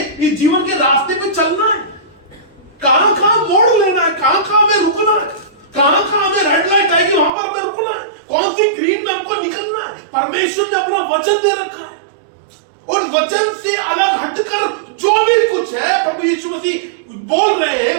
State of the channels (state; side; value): drops out; left; at 7.3 s